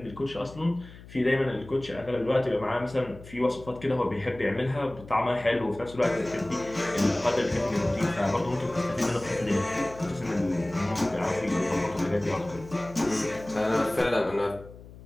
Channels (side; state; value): left; noise; hum, 18 dB below the sound